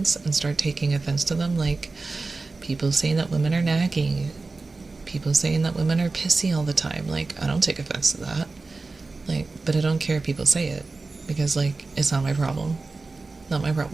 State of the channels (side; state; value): left; quieter; 3.7 dB